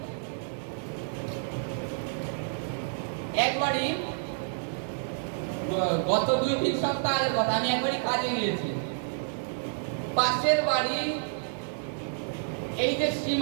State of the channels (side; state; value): left; silent; digital silence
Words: একবারই গত 2-3 সপ্তাহ আগের কথা, আমি একবারই কাজে গিয়েছি। পাশের বাড়ি এই যে